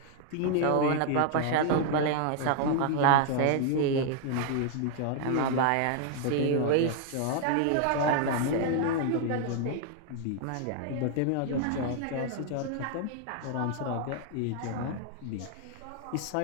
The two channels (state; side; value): different; both; correlation 0.00